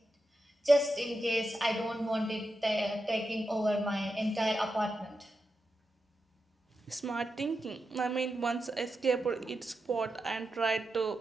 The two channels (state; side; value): normal; both; correlation 0.88